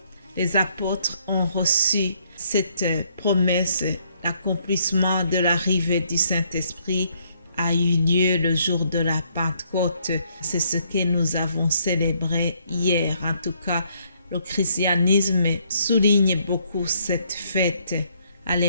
les apôtres ont reçu cette promesse. L'accomplissement de l'arrivée du Saint-Esprit a eu lieu le jour de la Pentecôte. C'est ce que nous avons célébré hier. En tout cas, le christianisme souligne beaucoup cette fête.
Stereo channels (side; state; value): both; inverted; correlation -0.70